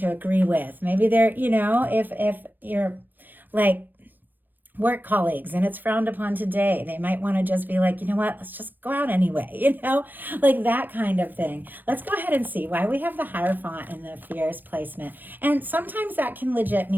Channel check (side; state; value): left; late; 0.088 ms